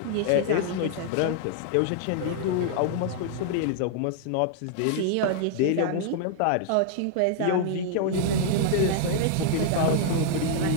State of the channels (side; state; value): both; different; correlation -0.01